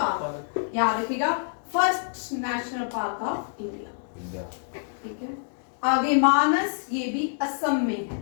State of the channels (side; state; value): right; silent; digital silence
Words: याद रखिएगा, first national park of India, ठीक है। आगे मानस, ये भी असम में है,